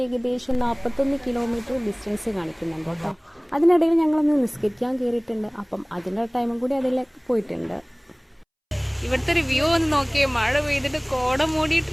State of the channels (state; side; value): identical; both; correlation 1.00